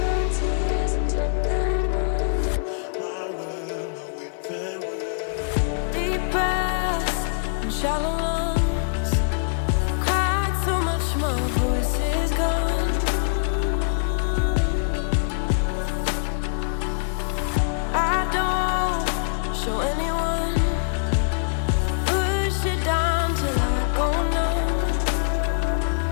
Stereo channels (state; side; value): silent; right; digital silence